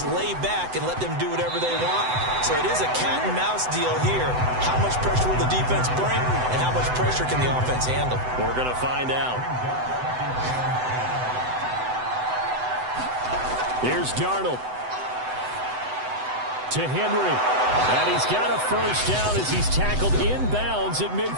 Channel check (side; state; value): left; late; 7.9 ms